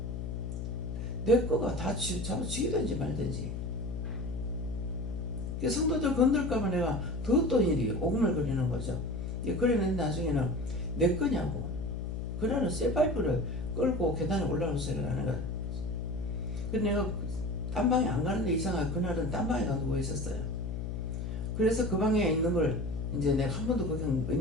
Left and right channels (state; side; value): noise; left; hum, 4 dB below the sound